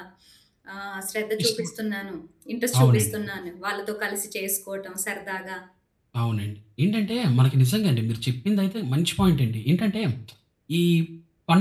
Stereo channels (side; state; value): both; identical; correlation 1.00